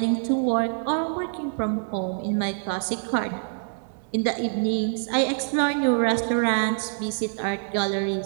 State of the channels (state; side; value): silent; left; 61 dB below the other